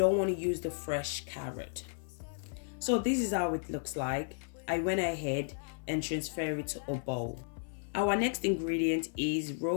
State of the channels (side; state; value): right; silent; 55 dB below the other